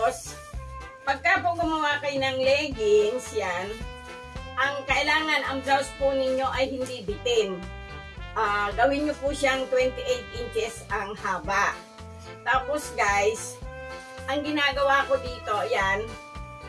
pagka po gumawa kayo ng leggings, yan, ang kailangan, ang blouse po ninyo ay hindi bitin. Gawin nyo po siyang 28 inches ang haba. Tapos guys, ang ginagawa ko dito, yan,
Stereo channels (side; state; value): both; identical; correlation 1.00